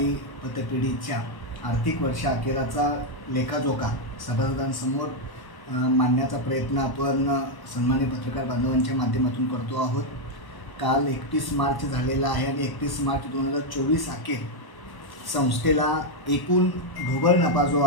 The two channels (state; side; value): late; right; 1.1 ms